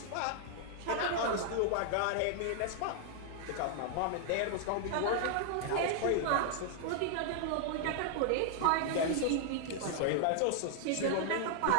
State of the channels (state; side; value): different; both; correlation 0.00